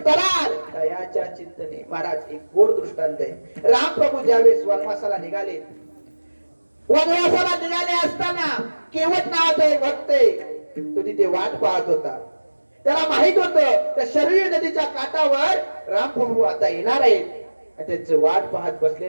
तराल? दयाच्या चिंतने. महाराज एक गोड दृष्टांत आहे. रामप्रभू ज्यावेळेस वनवासाला निघाले, वनवासाला निघाले असताना केवट नावाचा एक भक्त आहे, तो तिथे वाट पाहत होता. त्याला माहित होतं त्या शरयू नदीच्या काठावर रामप्रभू आता येणार आहेत. त्यांचं वाट पाहत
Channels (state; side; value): inverted; both; correlation -1.00